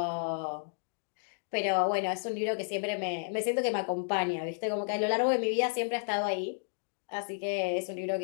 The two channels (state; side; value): silent; right; digital silence